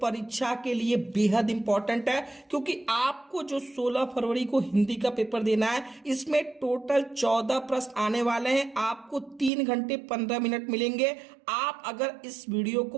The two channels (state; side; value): drops out; left; at 9.5 s